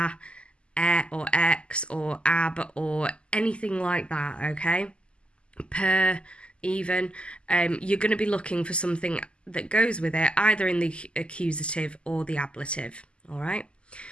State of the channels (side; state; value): right; late; 0.052 ms